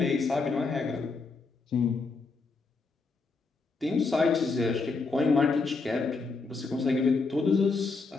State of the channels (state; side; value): quieter; right; 4.1 dB